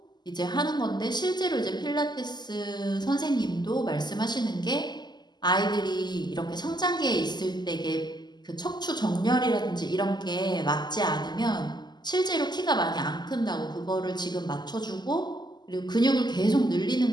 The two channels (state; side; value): late; right; 0.21 ms